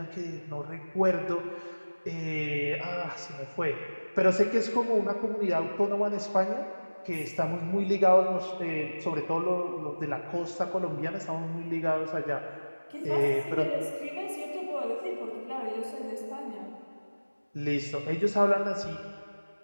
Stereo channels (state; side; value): inverted; both; correlation -1.00